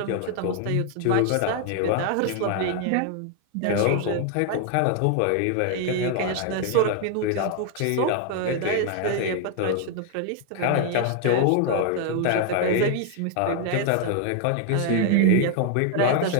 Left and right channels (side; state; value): both; different; correlation 0.00